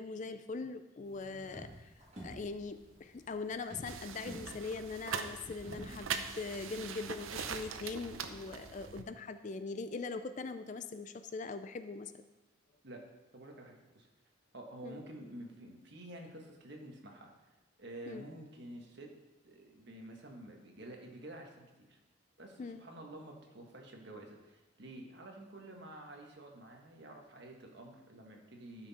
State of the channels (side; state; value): both; normal; correlation 0.28